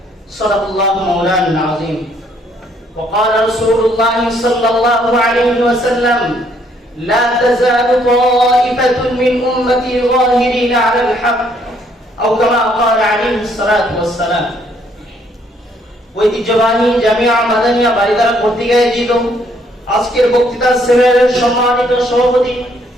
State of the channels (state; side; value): normal; both; correlation 0.67